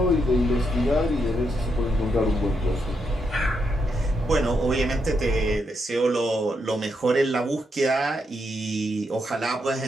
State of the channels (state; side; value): normal; both; correlation 0.80